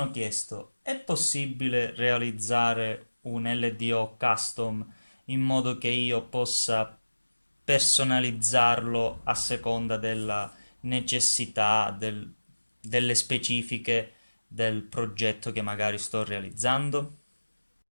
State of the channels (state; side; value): inverted; both; correlation -1.00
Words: chiesto, è possibile realizzare un LDO custom in modo che io possa personalizzarlo a seconda della necessità, delle specifiche del progetto che magari sto realizzando?